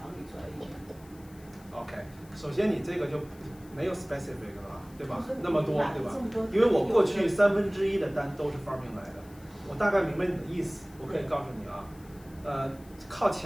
你做 agent？OK， 首先你这个就没有 specific 了吧，对吧？那么么多，对吧？因为我过去1/3的单都是 Farming 来的，我大概明白你的意思，我可以告诉你啊，靠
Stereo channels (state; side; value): noise; left; hiss, 25 dB below the sound